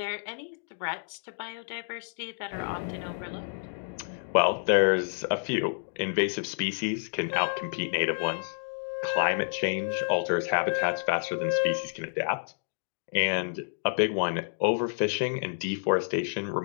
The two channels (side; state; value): right; silent; digital silence